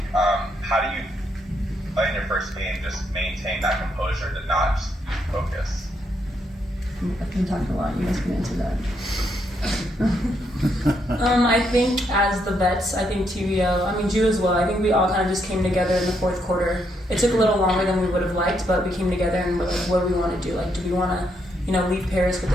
How do you, in your first game, just maintain that composure to not just focus? I've been talking a lot. You guys can answer that. I think as the vets, I think TVO, Ju as well, I think we all kind of just came together in the fourth quarter. It took a little longer than we would have liked, but we came together and we're like, what do we want to do? Like, do we want to, leave Paris with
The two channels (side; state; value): both; normal; correlation 0.77